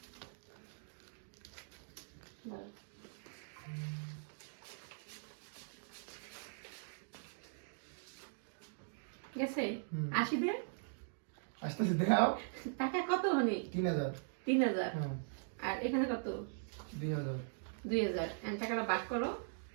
গেছে? আসি দে। আস্তে আস্তে দাও। টাকা কত হনি? 3000। 3000। হ্যাঁ, আর এখানে কত? 2000। 2000। এখন টাকাটা ভাগ করো।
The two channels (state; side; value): silent; left; digital silence